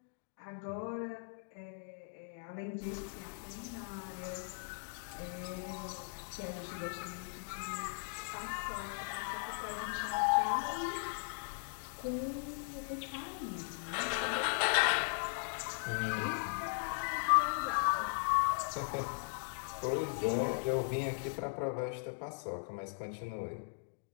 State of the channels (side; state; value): right; silent; digital silence